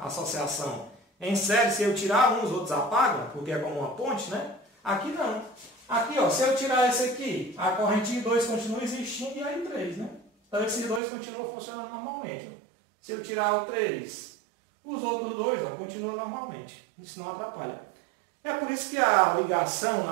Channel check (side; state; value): left; drops out; at 11.0 s